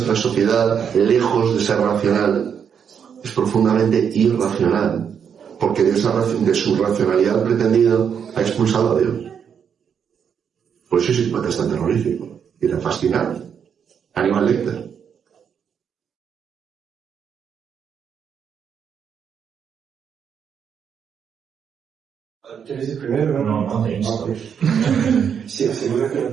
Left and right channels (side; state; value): left; quieter; 7.5 dB